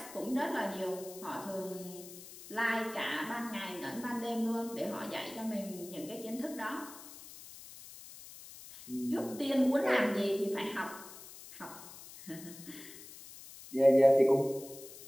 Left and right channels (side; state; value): left; noise; hiss, 16 dB below the sound